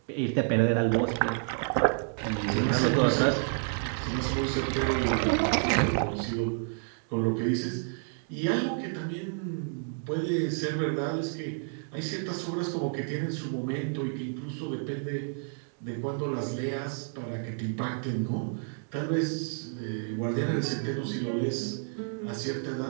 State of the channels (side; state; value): left; silent; 58 dB below the other